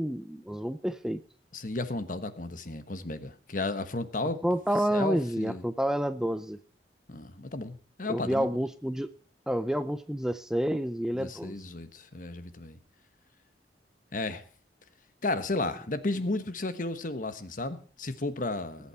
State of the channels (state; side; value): normal; both; correlation 0.70